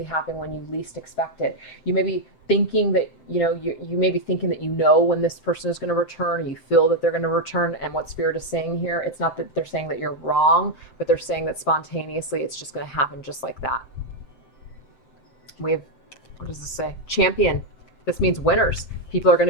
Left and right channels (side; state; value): right; late; 7.5 ms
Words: happen when you least expect it. You may be thinking that, you may be thinking that when this person is going to return, or you feel that they're going to return. And what Spirit is saying here, it's not that they're saying that you're wrong, but they're saying that spontaneously it's just going to happen just like that. We have, what does this say? Champion. This means winners. People are going